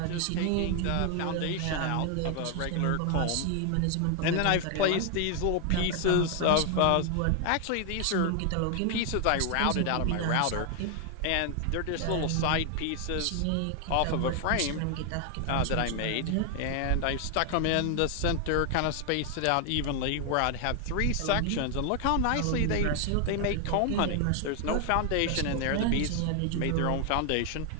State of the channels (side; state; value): both; different; correlation 0.00